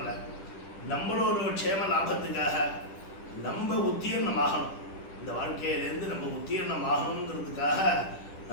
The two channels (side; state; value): right; late; 10 ms